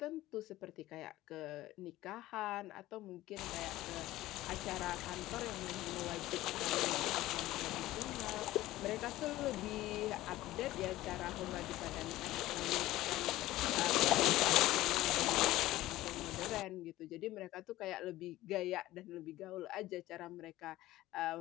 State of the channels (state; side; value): quieter; right; 16.3 dB